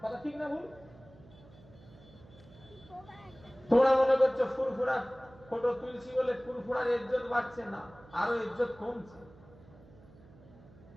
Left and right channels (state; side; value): noise; right; hum, 23 dB below the sound